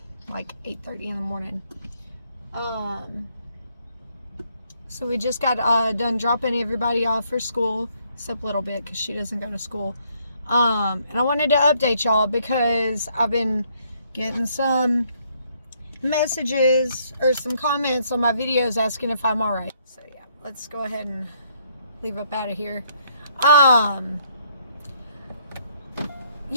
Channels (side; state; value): both; inverted; correlation -0.69